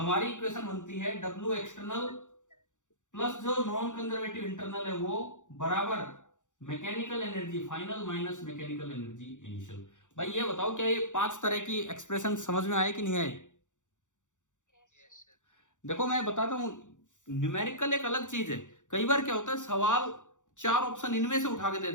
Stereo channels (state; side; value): late; right; 0.86 ms